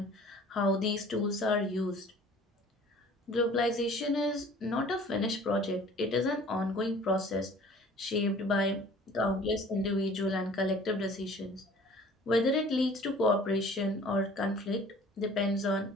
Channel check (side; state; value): both; normal; correlation 0.50